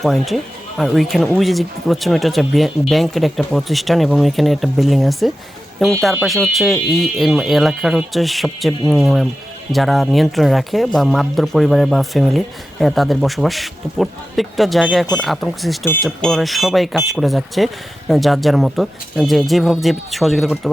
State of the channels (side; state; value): both; normal; correlation 0.93